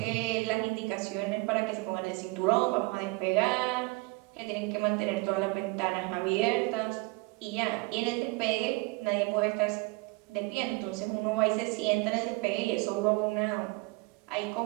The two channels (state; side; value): quieter; left; 25.9 dB